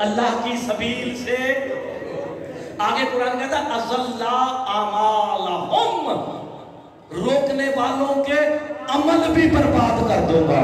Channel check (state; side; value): identical; both; correlation 1.00